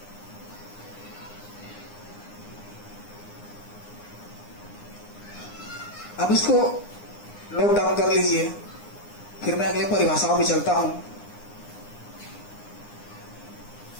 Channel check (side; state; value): right; late; 9.8 ms